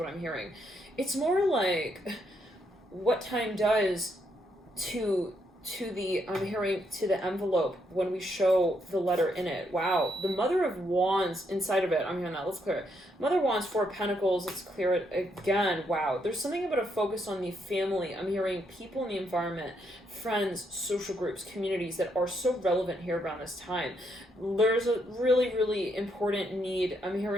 I'm hearing. It's more like what time does to the, I'm hearing, to the envelope when we show the letter in it. Wow. The Mother of Wands inside of it. I'm hearing that. Let's clear it. Mother of Wands, 4 of Pentacles. Let's clear it again. Wow. There's something about a focus on the family. I'm hearing people in the environment, friends, social groups, communities that are so relevant here around this time. There's a really, really important need. I'm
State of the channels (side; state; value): both; normal; correlation 0.76